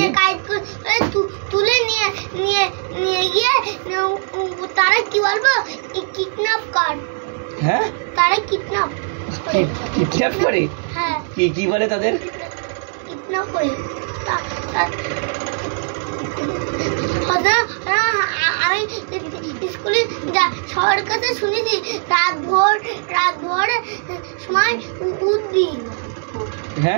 গাইড তুলে নিয়ে নিয়ে নিয়ে গিয়ে তারা কি বলবো কিডন্যাপ কর। হ্যাঁ, তারা কিডন্যাপ করে। হ্যাঁ, কি বলে তাদের? কিডন্যাপ করে। আমি স্কুলে সবার কাছে শুনেছি রাত ভোর সময় উঠবি।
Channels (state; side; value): silent; left; digital silence